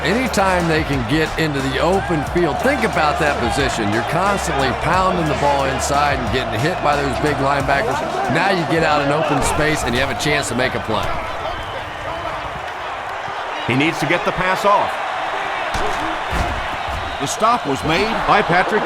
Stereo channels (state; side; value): identical; both; correlation 1.00